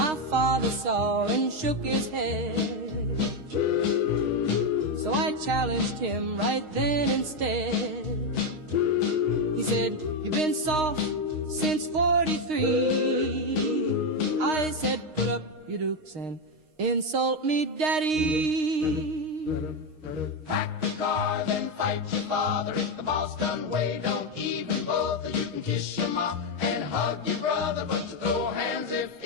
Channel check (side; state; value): left; late; 6.5 ms